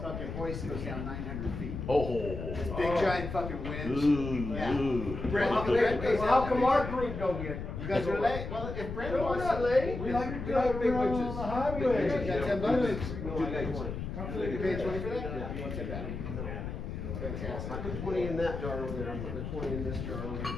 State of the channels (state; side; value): noise; left; rumble, 6 dB below the sound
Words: fucking hoist goes down 900 feet. Oh. This big giant fucking winch. Ooh, Yeah. ooh. Brent, Brent goes Well, how out come there. our group don't get? You guys are late. Well, if Brent No, we're wants not to, late. We like big winches. on the highway. You got 10 bucks. No, I got 20. You paid 20 for that? You want to take that? Fantastic. I put 20 in that jar over there. I'm putting the 20 in this jar over there